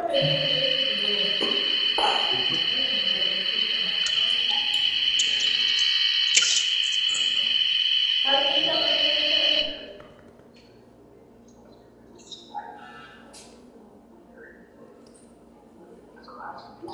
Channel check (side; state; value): both; identical; correlation 1.00